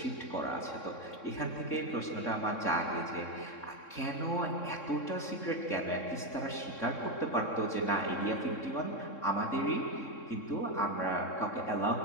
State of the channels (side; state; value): right; late; 3.6 ms